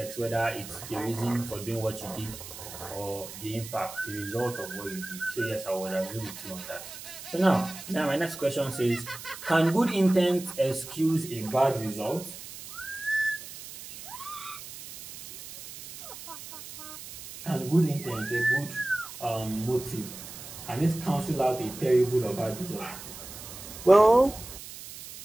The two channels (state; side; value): noise; right; hiss, 13 dB below the sound